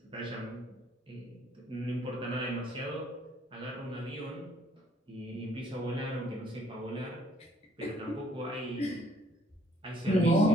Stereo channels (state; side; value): normal; both; correlation 0.63